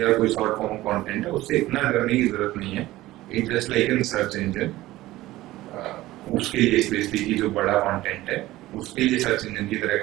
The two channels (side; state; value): left; quieter; 16.9 dB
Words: कोई शॉर्ट फॉर्म कंटेंट है उससे इतना करने की जरूरत नहीं है। It just like in search engine, उसके लिए स्पेसिफिकली जो बड़ा कंटेंट है उसके लिए सर्च इंजन की तरह